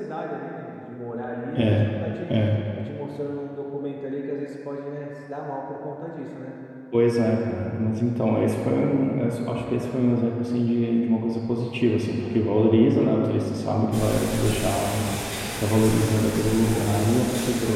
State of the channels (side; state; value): both; identical; correlation 1.00